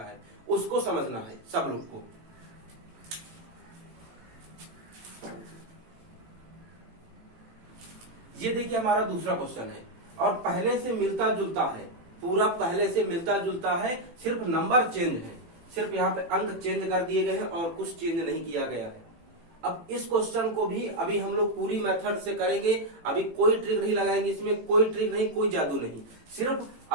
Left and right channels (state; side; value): late; left; 18 ms